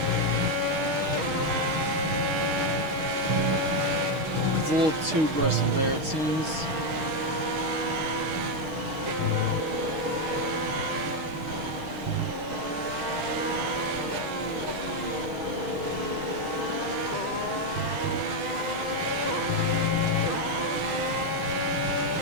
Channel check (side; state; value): left; late; 6.4 ms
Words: It's a little too aggressive there, it seems.